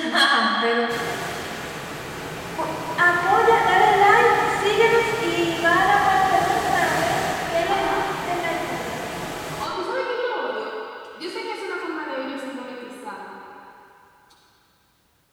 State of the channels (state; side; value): identical; both; correlation 1.00